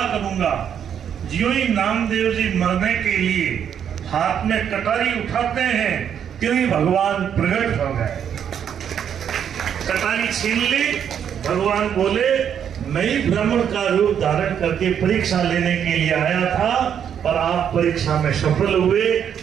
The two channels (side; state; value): left; quieter; 8.6 dB